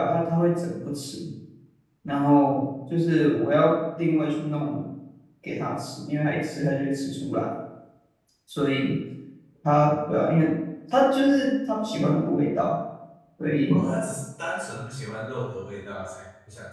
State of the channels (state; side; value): identical; both; correlation 1.00